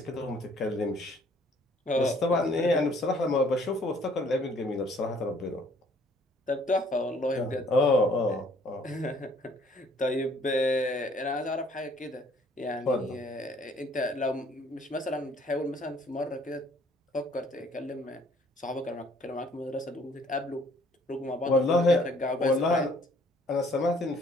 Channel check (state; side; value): normal; both; correlation 0.60